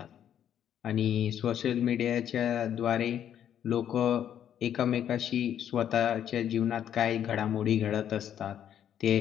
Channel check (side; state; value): right; quieter; 9.8 dB